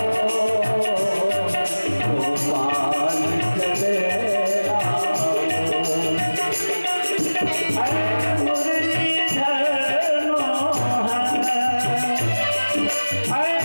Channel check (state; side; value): inverted; both; correlation -1.00